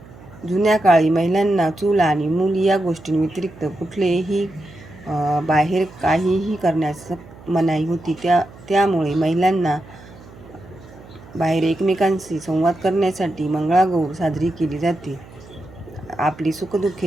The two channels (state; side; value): noise; right; hum, 20 dB below the sound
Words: जुन्या काळी महिलांना चूल आणि मूल या गोष्टींव्यतिरिक्त कुठलेही बाहेर काहीही करण्यास मनाई होती. त्यामुळे महिलांना बाहेर एकमेकांशी संवाद करण्यासाठी मंगळागौर साजरी केली जाते. आपली